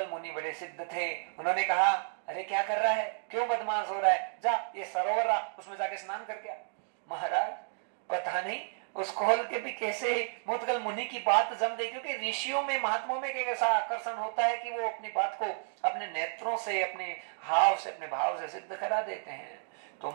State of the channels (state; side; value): silent; left; digital silence